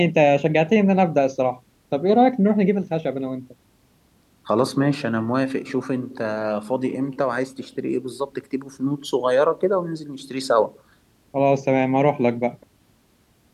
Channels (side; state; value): both; identical; correlation 1.00